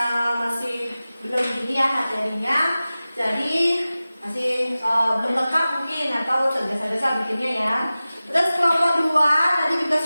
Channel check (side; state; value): both; inverted; correlation -0.96